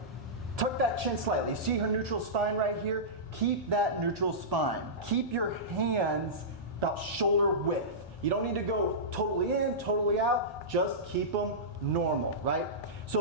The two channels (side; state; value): both; normal; correlation -0.17